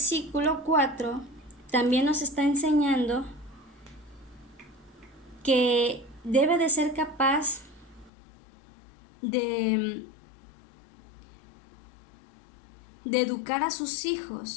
4 también nos está enseñando que debe de ser capaz de educar a sus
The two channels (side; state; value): right; drops out; at 8.1 s